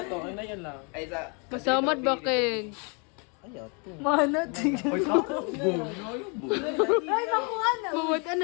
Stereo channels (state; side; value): quieter; right; 34.9 dB